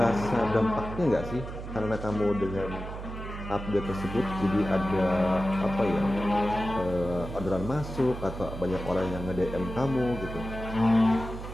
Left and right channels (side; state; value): right; noise; hum, 9 dB below the sound